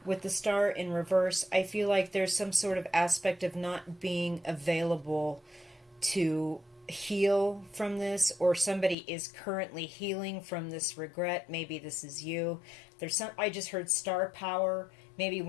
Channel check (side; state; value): right; drops out; at 9.0 s